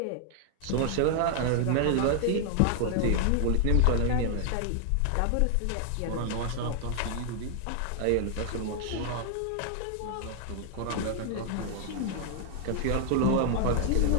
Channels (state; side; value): different; both; correlation 0.00